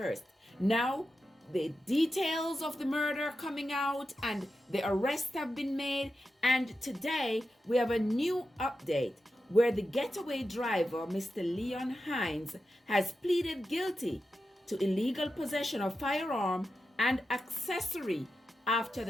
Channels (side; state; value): both; normal; correlation 0.90